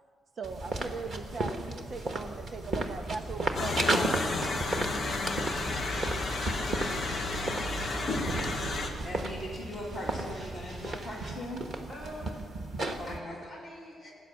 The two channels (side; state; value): both; normal; correlation 0.76